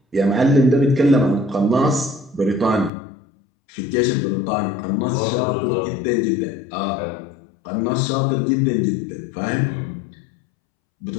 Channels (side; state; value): right; drops out; at 2.9 s